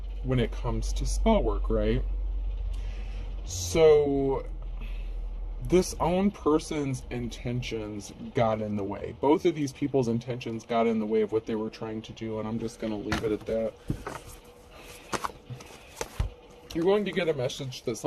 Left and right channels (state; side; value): identical; both; correlation 1.00